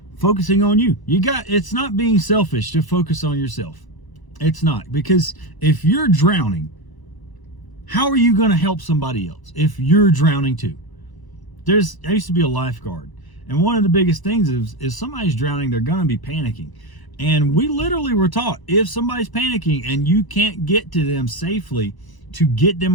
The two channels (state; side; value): late; right; 1.0 ms